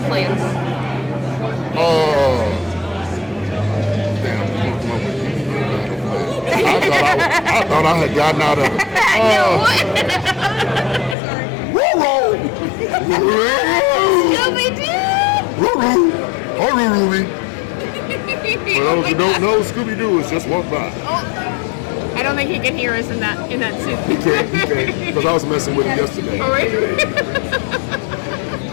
plans. Oh. Damn. I thought I had gotten out of it. Scooby-Doo! For those who don't know, Scooby-Doo is just walk by. Oh, I don't think he can hear us in that suit. He can't, because I was messing with him yesterday. Oh, right.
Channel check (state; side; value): drops out; right; at 11.2 s